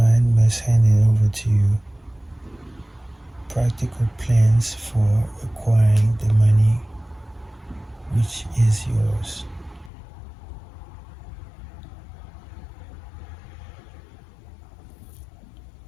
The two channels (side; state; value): right; drops out; at 9.9 s